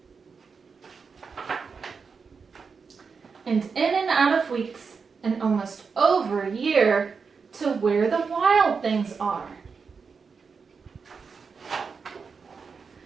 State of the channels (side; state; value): left; quieter; 5.4 dB